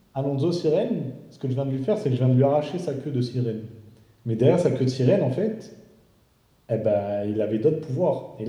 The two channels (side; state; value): both; identical; correlation 1.00